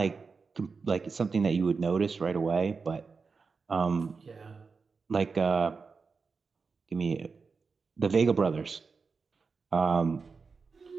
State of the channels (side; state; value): left; quieter; 4.8 dB